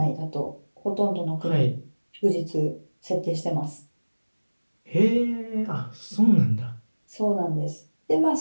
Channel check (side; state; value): both; inverted; correlation -1.00